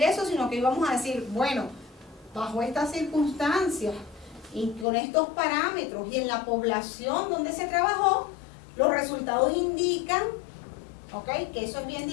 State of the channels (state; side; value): drops out; right; at 4.9 s